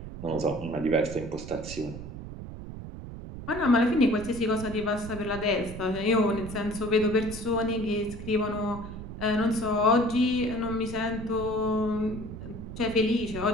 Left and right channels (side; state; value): right; noise; rumble, 10 dB below the sound